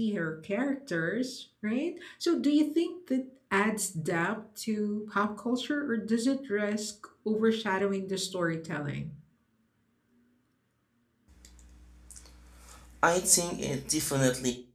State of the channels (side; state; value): both; identical; correlation 1.00